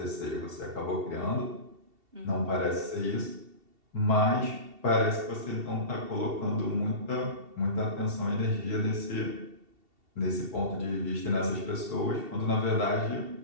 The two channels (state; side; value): late; left; 2.7 ms